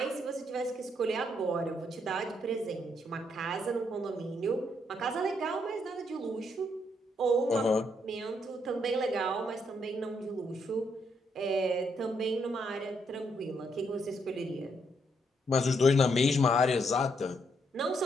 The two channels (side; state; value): both; normal; correlation 0.75